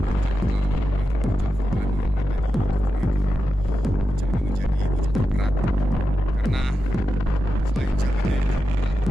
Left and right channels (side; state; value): both; normal; correlation 0.90